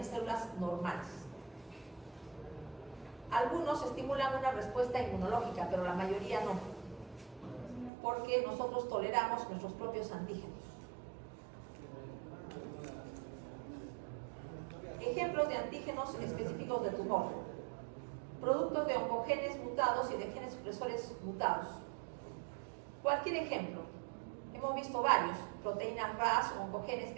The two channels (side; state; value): left; drops out; at 7.9 s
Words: células normales. Algunos estimulan una respuesta inmunológica, pero la mayoría no, porque nosotros toleramos nuestros propios antígenos. Ejemplos de antígenos específicos de tumor. Productos de oncogenes mutados y de genes supresores mutados. Cualquier ejemplo. Hemos visto varios. Proteínas RAS, oncogenes